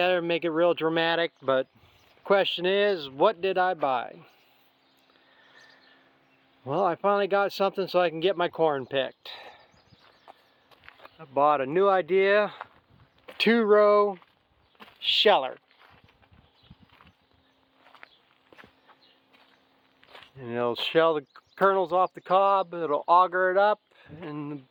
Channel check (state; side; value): identical; both; correlation 1.00